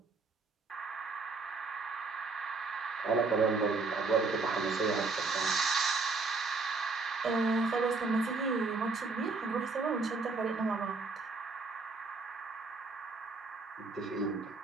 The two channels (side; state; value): left; quieter; 4.0 dB